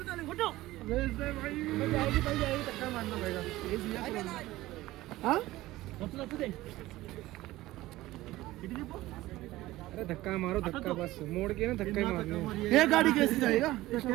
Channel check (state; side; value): quieter; left; 17.2 dB